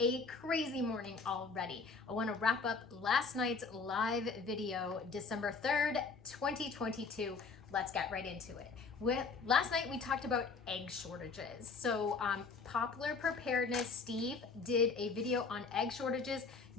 crazy morning already. I want to wrap up last night's live video, December 3rd, 2022. Let's get right into it. Last night we talked about egg shortages. So Popular Preparedness, Steve did a video on egg shortages,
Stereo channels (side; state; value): right; quieter; 4.7 dB